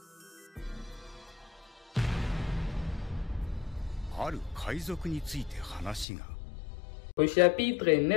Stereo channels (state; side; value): drops out; right; at 6.1 s